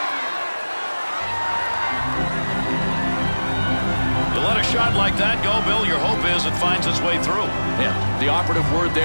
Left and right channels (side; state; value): both; inverted; correlation -1.00